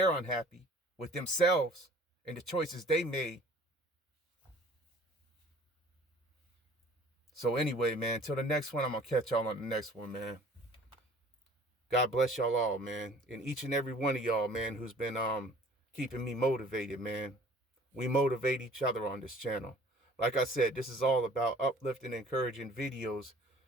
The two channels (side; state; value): both; normal; correlation 0.51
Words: unhappy with themselves and the choices they made. So anyway, man, till the next one, I'm going to catch y'all on the next one, man. God bless y'all all, man. And each and every one of y'all, man, who's been keeping me motivated, man. We motivate each other on this channel. Like I said, this is all about uplifting, encouraging videos